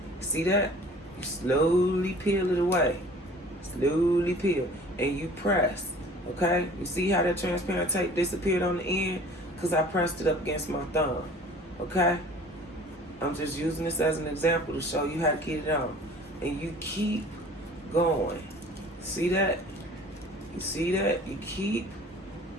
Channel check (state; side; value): normal; both; correlation 0.47